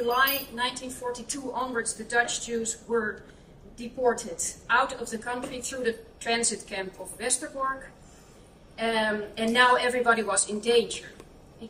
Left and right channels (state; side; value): identical; both; correlation 1.00